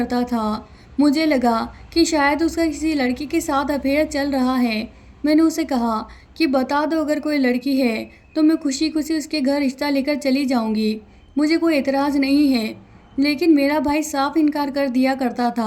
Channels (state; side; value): identical; both; correlation 1.00